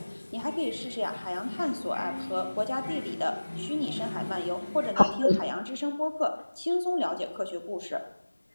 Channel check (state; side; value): inverted; both; correlation -1.00